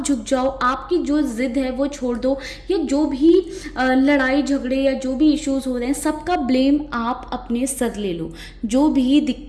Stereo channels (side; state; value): both; identical; correlation 1.00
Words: झुक जाओ, आपकी जो जिद है वो छोड़ दो, या जो भी लड़ाई झगड़े या जो भी इश्यूज हो रहे हैं सबका ब्लेम आप अपने सर ले लो। जो भी